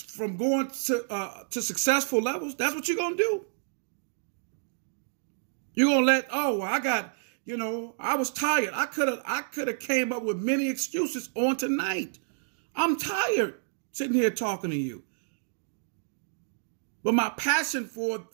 successful levels. That's what you're going to do. You're going to let, I was tired. I could have came up with many excuses on tonight. I'm tired sitting here talking to you. But my passion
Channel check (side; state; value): left; silent; digital silence